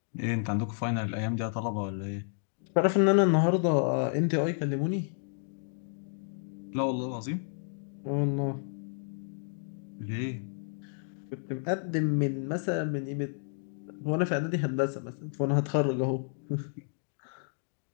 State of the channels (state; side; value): silent; right; digital silence